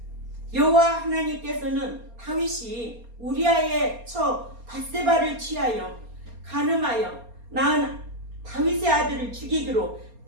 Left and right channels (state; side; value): late; left; 4.3 ms